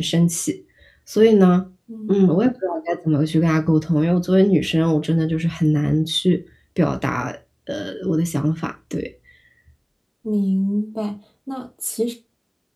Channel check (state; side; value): identical; both; correlation 1.00